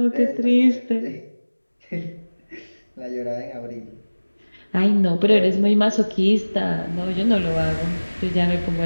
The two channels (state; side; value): inverted; both; correlation -1.00